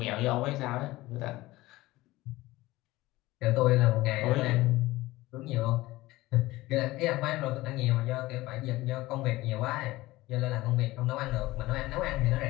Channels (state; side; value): quieter; right; 18.6 dB